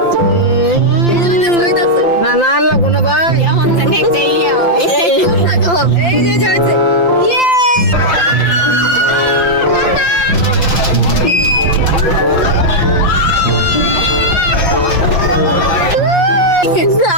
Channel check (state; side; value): late; right; 5.8 ms